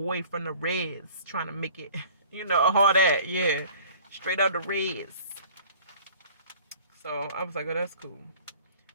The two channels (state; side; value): inverted; both; correlation -0.49